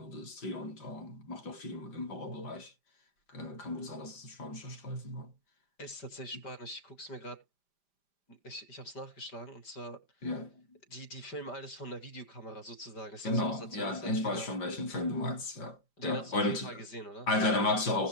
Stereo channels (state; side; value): late; right; 5.0 ms